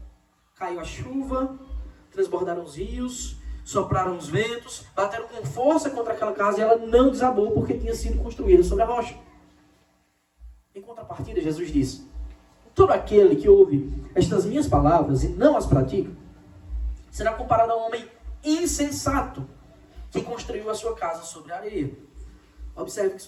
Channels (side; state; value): both; identical; correlation 1.00